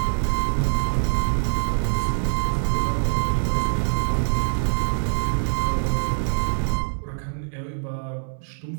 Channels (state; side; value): silent; left; digital silence